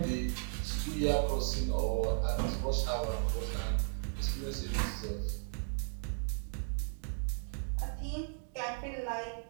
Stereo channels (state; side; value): silent; left; digital silence